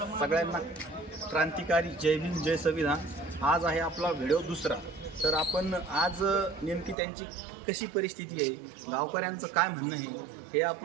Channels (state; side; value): drops out; left; at 7.0 s